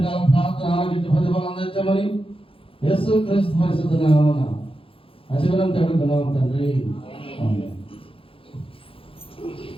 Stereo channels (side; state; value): right; late; 0.27 ms